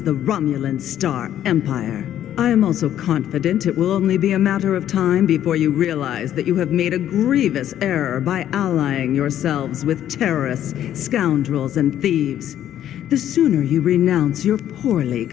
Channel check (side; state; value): right; quieter; 11.2 dB